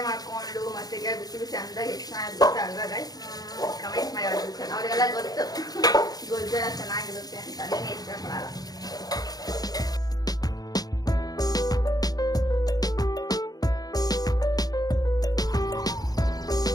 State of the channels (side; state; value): right; late; 0.19 ms